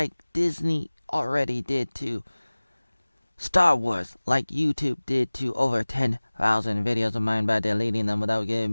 Disney already did to Star Wars, like YouTube did to over 10,000 videos of mine by deleting them without giving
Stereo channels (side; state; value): both; inverted; correlation -1.00